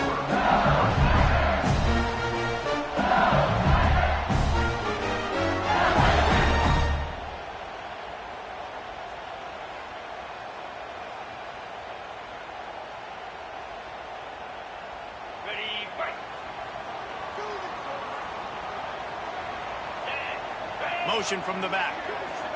Motion from the back.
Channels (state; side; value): identical; both; correlation 1.00